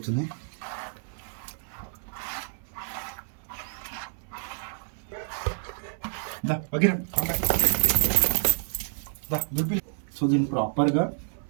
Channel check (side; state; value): left; silent; 59 dB below the other